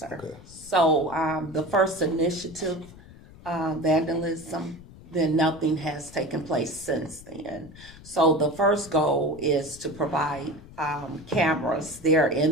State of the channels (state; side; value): noise; left; rumble, 19 dB below the sound